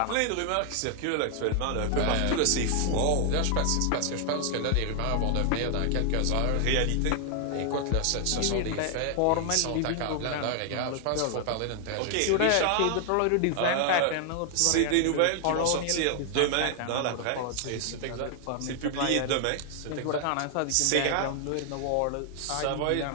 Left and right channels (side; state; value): both; different; correlation 0.00